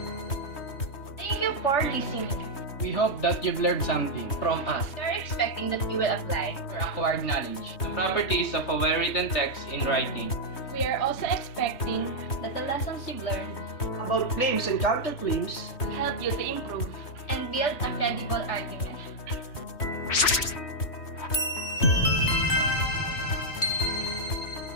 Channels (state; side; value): late; right; 3.2 ms